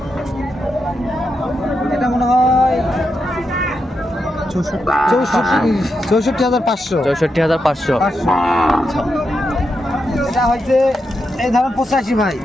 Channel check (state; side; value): normal; both; correlation 0.85